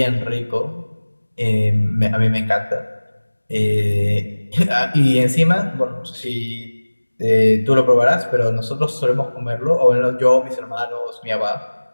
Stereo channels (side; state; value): both; inverted; correlation -1.00